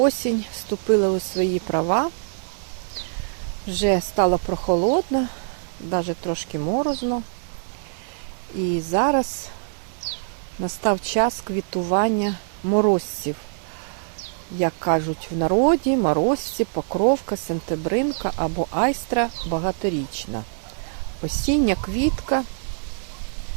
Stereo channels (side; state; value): left; silent; digital silence